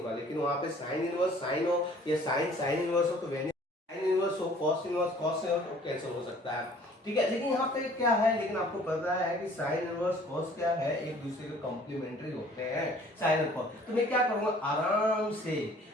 लेकिन वहां पे साइन इनवर्स साइन हो या साइन इनवर्स हो तो वेनिश, साइन इनवर्स हो कॉस इनवर्स कॉस इनवर्स तो कैंसिल हो सकता है। ठीक है, लेकिन यहाँ पे क्या है, लेकिन आपको पता है कि साइन इनवर्स कॉस क्या है, एक दूसरे के कॉम्प्लीमेंट्री होते हैं साइन और कॉस। तो मैं क्या करूंगा, आराम से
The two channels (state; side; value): normal; both; correlation 0.53